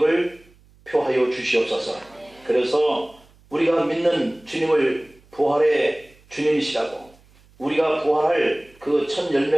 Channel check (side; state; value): right; noise; hum, 29 dB below the sound